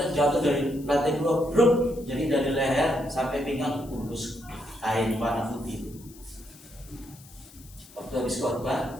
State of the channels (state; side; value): noise; left; hiss, 22 dB below the sound